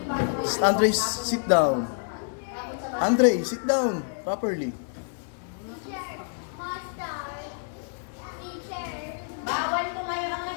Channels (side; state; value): right; silent; 59 dB below the other